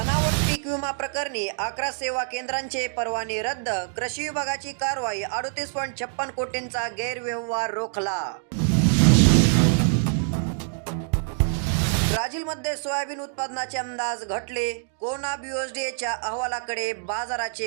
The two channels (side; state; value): left; silent; digital silence